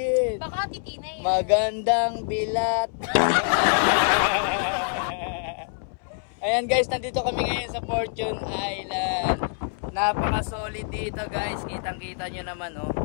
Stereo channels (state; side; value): silent; right; 61 dB below the other